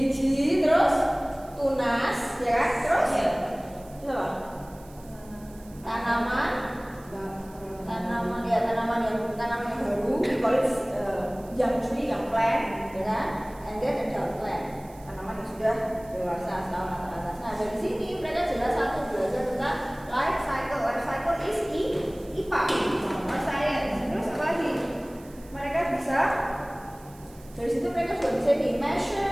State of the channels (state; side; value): noise; right; hiss, 25 dB below the sound